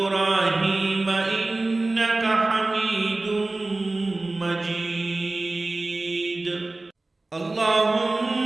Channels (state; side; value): quieter; left; 3.0 dB